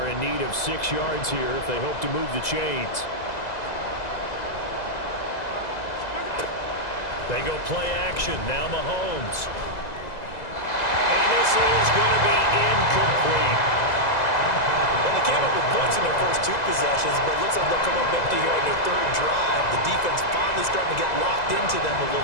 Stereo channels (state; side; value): late; right; 2.0 ms